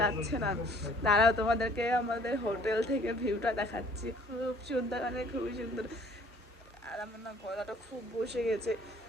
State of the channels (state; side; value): normal; both; correlation 0.57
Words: না। দাঁড়াও তোমাদেরকে আমাদের হোটেল থেকে ভিউটা দেখাচ্ছি, খুব সুন্দর, মানে খুবই সুন্দর। আর আমার না গলাটা খুব বসে গেছে,